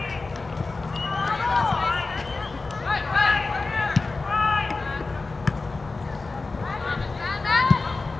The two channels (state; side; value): quieter; right; 3.7 dB